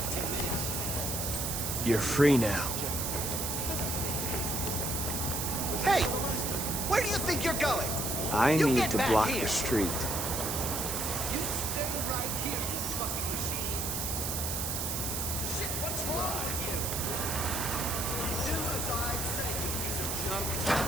You're free now. Hey! Where do you think you're going? I You need get to back block here. the street. You stay right here, you fucking machine. Shit, what's wrong with you? Do as I say, you piece of junk.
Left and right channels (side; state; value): right; noise; hiss, 1 dB below the sound